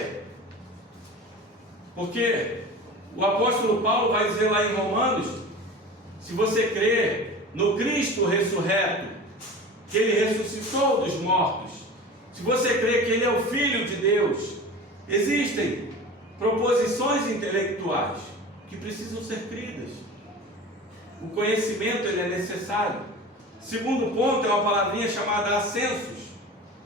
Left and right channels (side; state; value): both; normal; correlation 0.35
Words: porque o apóstolo Paulo vai dizer lá em Romanos, se você crê no Cristo ressurreto, que Ele ressuscitou dos mortos, se você crê que Ele é o Filho de Deus, existem proposições intelectuais que precisam ser cridas. O conhecimento ele é necessário. Segundo ponto é uma palavrinha chamada assensus,